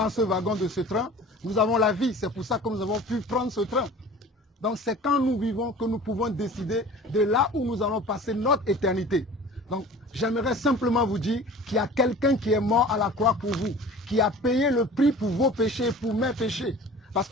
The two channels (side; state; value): both; normal; correlation 0.42